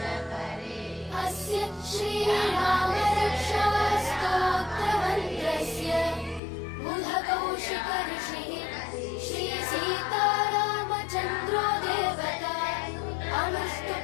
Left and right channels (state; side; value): drops out; right; at 6.4 s